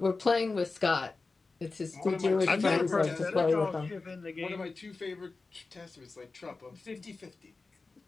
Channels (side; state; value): right; quieter; 3.9 dB